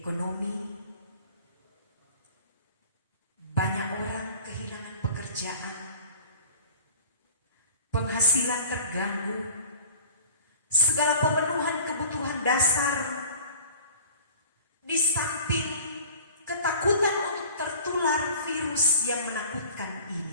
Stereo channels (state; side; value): inverted; both; correlation -0.44